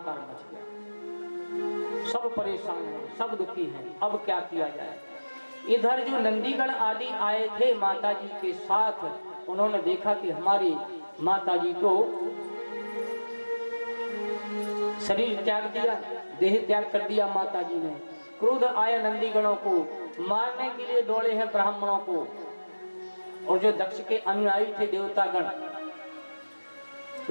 मच गया। सब परेशान हैं, सब दुखी हैं, अब क्या किया जाए। इधर जो नंदीगण आदि आए थे माता जी के साथ, उन्होंने देखा कि हमारी माता जी तो शरीर त्याग दिया, देह त्याग कर दिया माता जी ने। क्रोध आया नंदीगणों को, मारने के लिए दौड़े हैं ब्राह्मणों को। और जो दक्ष के अनुयायी थे देवतागण,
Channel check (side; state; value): both; inverted; correlation -1.00